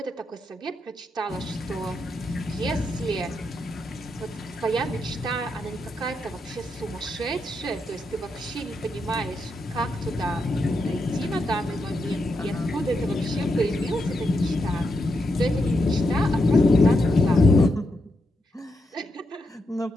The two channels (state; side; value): normal; both; correlation 0.83